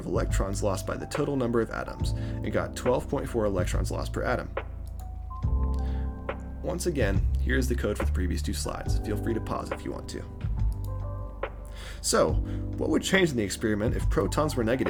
electrons lost by the total number of atoms, and got 12.4 electrons lost per atom. Once again, here is the code for the previous two slides. Feel free to pause if you want to. So, what would change in the experiment if protons were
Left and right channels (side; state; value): both; identical; correlation 1.00